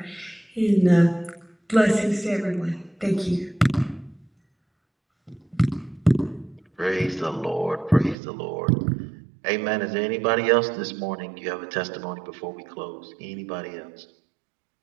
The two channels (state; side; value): drops out; left; at 8.2 s